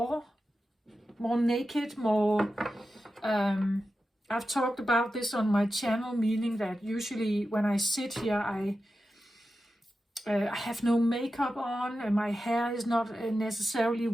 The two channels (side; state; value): both; normal; correlation 0.91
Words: more naked, more. I've talked about this on my channel, meaning that usually when I sit here, I have no makeup on, and my hair is not necessarily